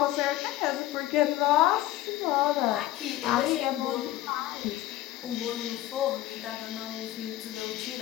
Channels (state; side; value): quieter; right; 15.0 dB